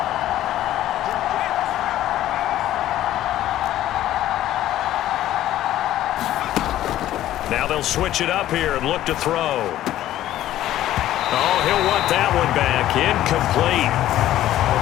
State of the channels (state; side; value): quieter; right; 13.4 dB